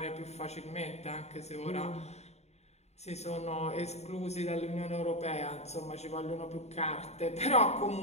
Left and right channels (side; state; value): right; late; 0.32 ms